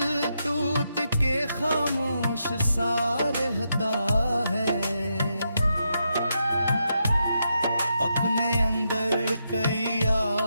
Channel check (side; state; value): both; inverted; correlation -0.83